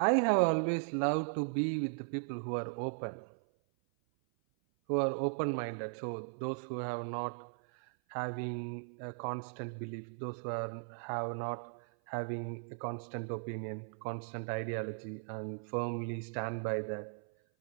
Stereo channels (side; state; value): left; silent; 53 dB below the other